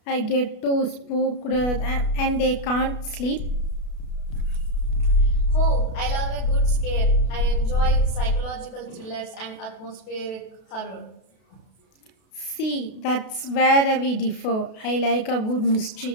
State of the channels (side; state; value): right; late; 32 ms